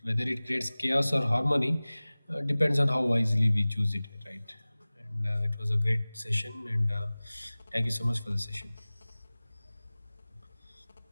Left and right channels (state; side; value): inverted; both; correlation -0.99